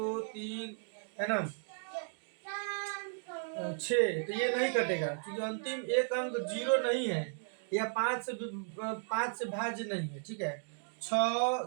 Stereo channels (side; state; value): left; silent; 54 dB below the other